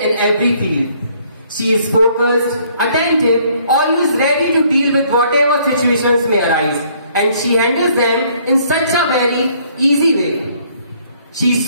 every field. She is focused, attentive, always ready to deal with whatever situations may arise, and she handles them in such a very easy way. She is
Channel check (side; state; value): both; inverted; correlation -0.63